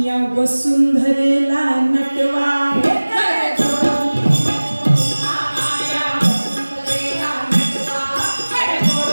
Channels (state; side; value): inverted; both; correlation -1.00